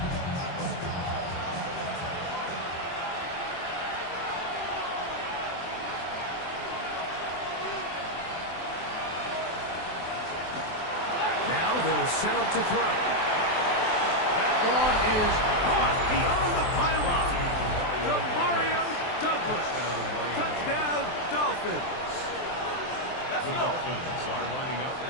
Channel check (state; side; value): late; right; 23 ms